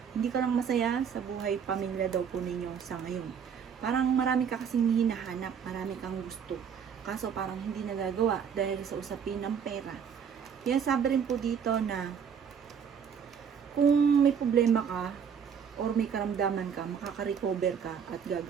hindi ka lang masaya sa buhay pamilya daw po ninyo sa ngayon. Parang marami ka kasing hinahanap, marami kang gusto. Kaso parang hindi nagagawa dahil sa usapin ng pera. Kaya sabi rin po dito na kung may problema ka, or may karamdaman ka, makaka-recover ka at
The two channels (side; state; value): left; quieter; 7.3 dB